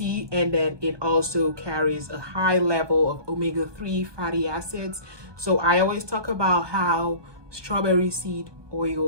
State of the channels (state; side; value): late; left; 1.2 ms